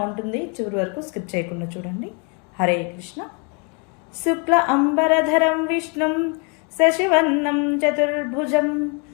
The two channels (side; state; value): right; quieter; 34.0 dB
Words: చివరి వరకు స్కిప్ చేయకుండా చూడండి. హరే కృష్ణ. శుక్ల అంబరధరం విష్ణుం శశివర్ణం చతుర్భుజం